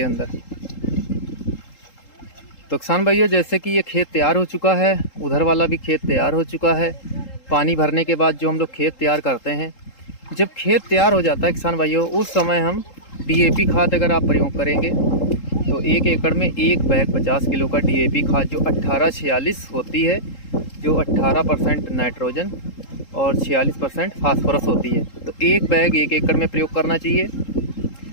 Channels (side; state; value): right; late; 3.8 ms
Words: अंदर। तो किसान भाइयों, जैसे कि ये खेत तैयार हो चुका है, उधर वाला भी खेत तैयार हो चुका है। पानी भरने के बाद जो हम लोग खेत तैयार करते हैं, जब खेत तैयार हो जाता है किसान भाइयों, उस समय हम DAP खाद अगर आप प्रयोग करेंगे तो 1 एकड़ में 1 बैग 50 किलो का DAP खाद जो 1846 होती है, जो 18% नाइट्रोजन और 46% फास्फोरस होती है, तो 1 बैग 1 एकड़ में प्रयोग करना चाहिए।